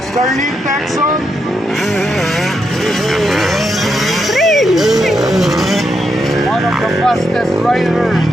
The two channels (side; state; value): both; normal; correlation 0.82